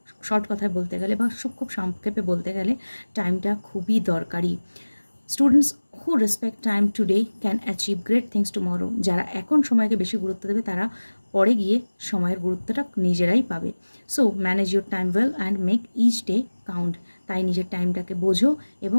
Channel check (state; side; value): inverted; both; correlation -1.00